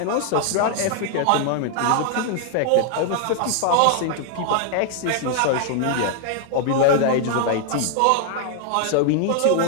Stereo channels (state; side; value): different; both; correlation 0.00